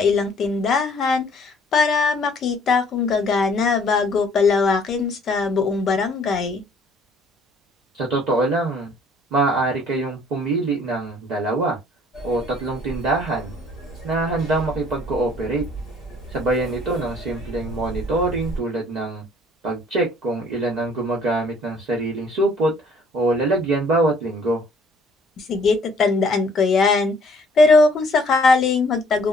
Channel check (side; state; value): both; normal; correlation 0.59